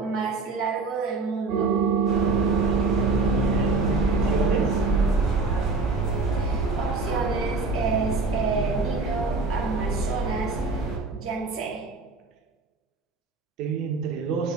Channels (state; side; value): quieter; left; 3.9 dB